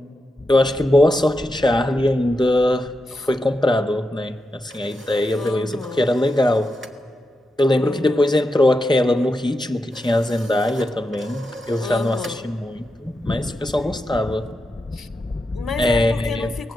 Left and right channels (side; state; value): both; normal; correlation 0.87